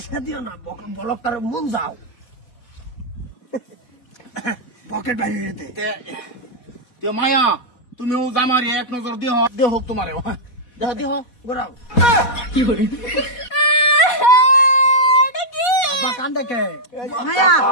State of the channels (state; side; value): late; right; 4.2 ms